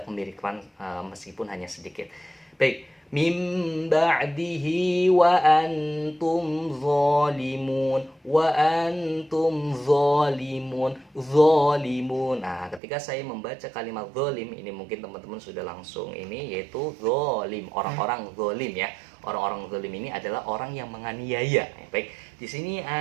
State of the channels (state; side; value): drops out; left; at 12.8 s